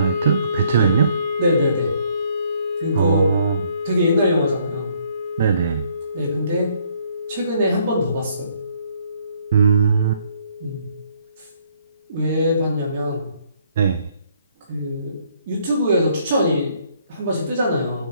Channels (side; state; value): both; inverted; correlation -0.66